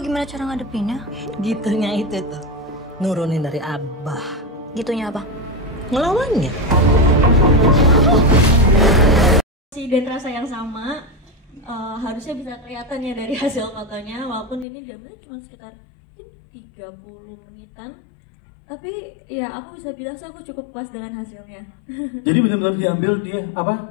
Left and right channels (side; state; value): right; drops out; at 14.7 s